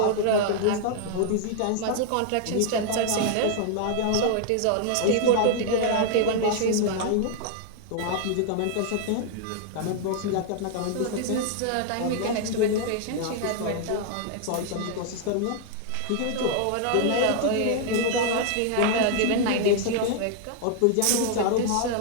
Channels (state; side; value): different; both; correlation 0.00